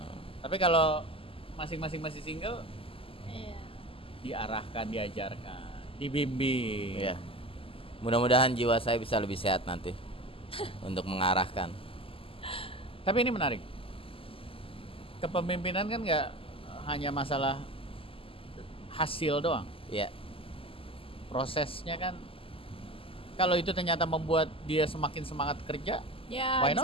Tapi kalau masing-masing masih single, Iya. diarahkan, diajarkan, dibimbing. Iya. Mudah-mudahan jiwa saya bisa lebih sehat nanti untuk mengarahkan. Tapi ini menarik. Kepemimpinan kan nggak hanya masalah hasil doang. Iya. Prosesnya kan Kalau itu ternyata membuat dia semakin semangat kerja, Ya Why bisa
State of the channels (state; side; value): late; right; 0.26 ms